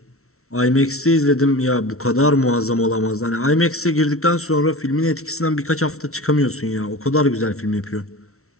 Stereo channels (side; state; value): right; late; 0.63 ms